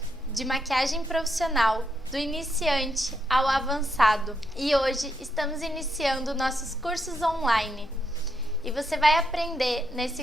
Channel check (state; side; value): normal; both; correlation 0.79